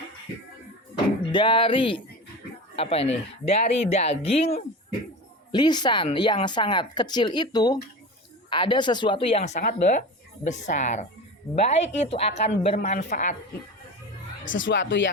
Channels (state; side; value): normal; both; correlation 0.29